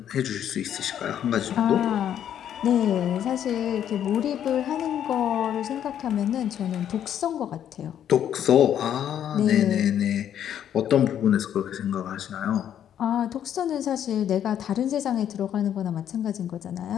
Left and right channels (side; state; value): right; quieter; 9.9 dB